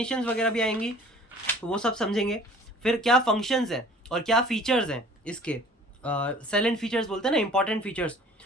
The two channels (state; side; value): normal; both; correlation 0.49